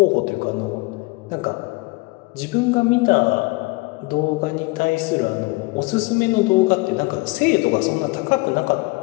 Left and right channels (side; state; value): right; quieter; 25.0 dB